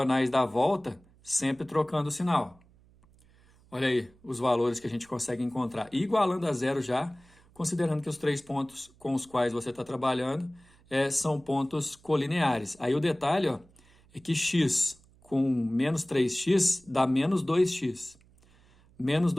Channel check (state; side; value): noise; right; hum, 29 dB below the sound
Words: da volta, sempre trocando o sinal. Olha aí os valores que a gente consegue encontrar. E igualando a zero já, considerando que os três pontos com os quais você está trabalhando são pontos colineares. Aí o detalhe é que x com menos 3x dá menos 2x. Menos